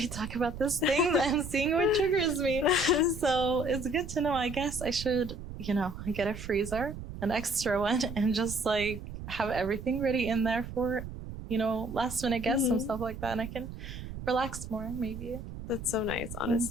talk about this thing, I'm seeing what triggers me. So it's good to know. I guess I should, get a freezer, an extra one, and just like have everything ready in there for, last minute guests and stuff like that. And I can relax more, maybe. That's so nice,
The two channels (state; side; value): noise; right; rumble, 10 dB below the sound